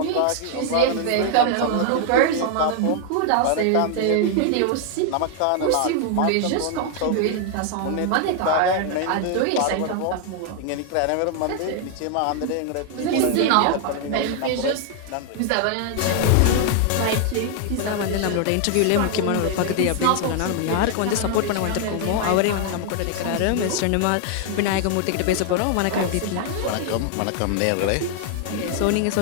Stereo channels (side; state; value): both; different; correlation 0.00